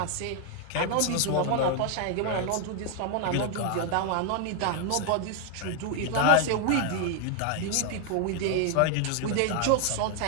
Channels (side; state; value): both; different; correlation 0.00